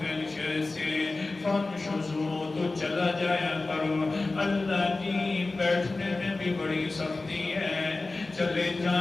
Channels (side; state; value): right; quieter; 3.3 dB